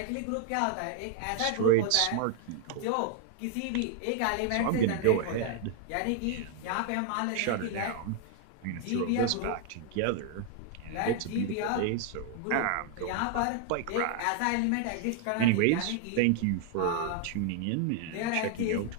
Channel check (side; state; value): both; different; correlation 0.00